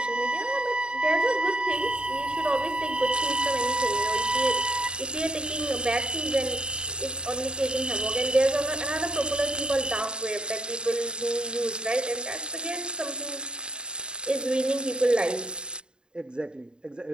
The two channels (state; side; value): late; left; 0.050 ms